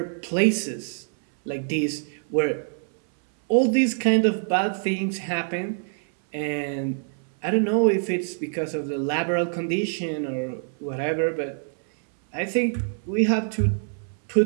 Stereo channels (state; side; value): silent; left; 62 dB below the other